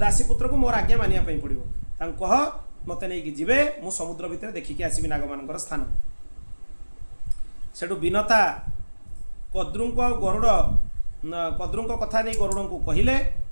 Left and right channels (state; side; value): inverted; both; correlation -1.00